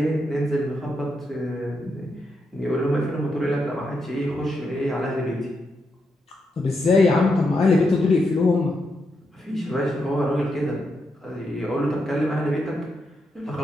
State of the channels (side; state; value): both; normal; correlation 0.83